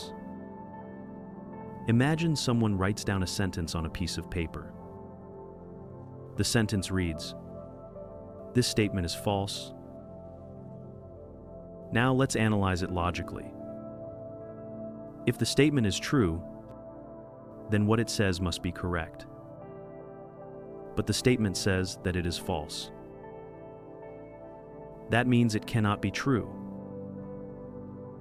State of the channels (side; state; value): both; identical; correlation 1.00